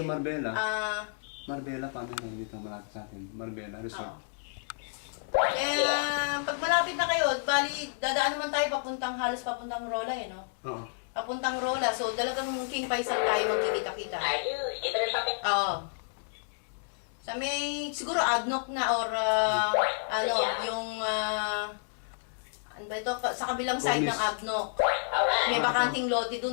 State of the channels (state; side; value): silent; right; digital silence